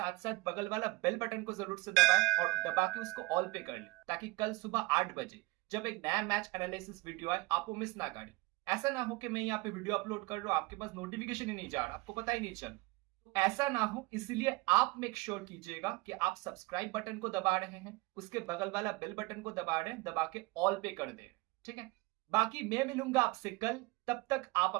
साथ बगल वाला बेल बटन को जरूर से दबाएं और दबा के उसको ऑल पे कर ले, ताकि कल सुबह 8 बजे जब एक नया मैच एनालिसिस वीडियो आए आप वो मिस ना करें। ऐसा ना हो कि मैं यहाँ पे वीडियो अपलोड कर रहा हूँ, आपके पास नोटिफिकेशन ही नहीं जा रहा, आपको पता ही नहीं चल। ऐसा ना हो, इसलिए आप मेक श्योर कीजिएगा कि आप सब्सक्राइब बटन को दबा रहे हैं, उसके बगल वाला बेल बटन को दबा रहे हैं, दबा के ऑल पे कर दे, ठीक है। बाकी मैं मिलूंगा आपसे कल, तब तक आप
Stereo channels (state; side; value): quieter; left; 23.1 dB